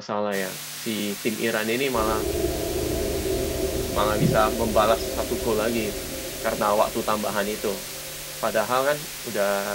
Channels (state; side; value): identical; both; correlation 1.00